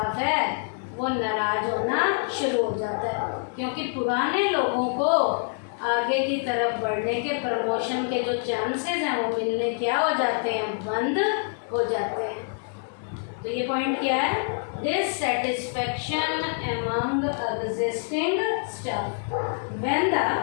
है, वो नाराज होना शुरू हो जाता है, क्योंकि पुराने लोगों को आगे की तरफ बढ़ने के, प्रमोशन के जो चांसेस हैं वो मिलने क्या हो जाते हैं, बंद हो जाते हैं। तो ये पॉइंट क्या है, dissatisfaction among existing staff. When the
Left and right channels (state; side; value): silent; right; 57 dB below the other